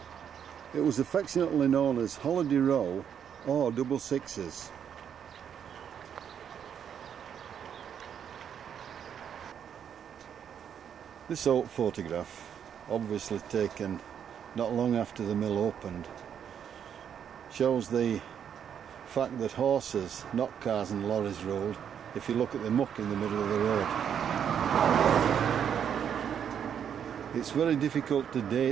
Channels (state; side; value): quieter; left; 8.4 dB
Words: It was affectionately known as Holiday Row or Double Sixes. This old photograph, obviously taken not long after the mill opened, shows the fact that horses, not cars and lorries, ruled if you look at the muck in the middle of the road. It's very difficult to